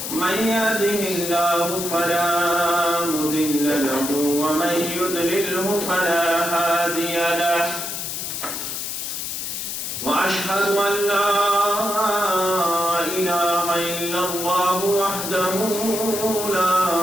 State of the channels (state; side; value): noise; left; hiss, 5 dB below the sound